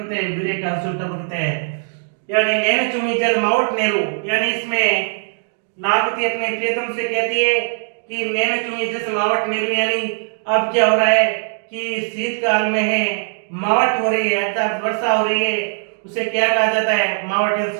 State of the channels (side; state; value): left; silent; digital silence